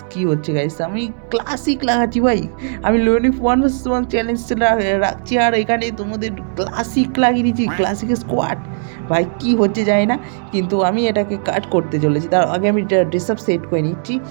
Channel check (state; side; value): silent; left; digital silence